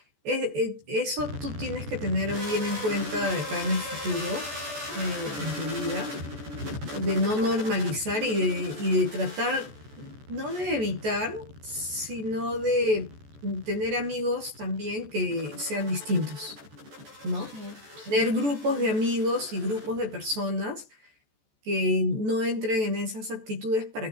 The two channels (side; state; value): left; late; 14 ms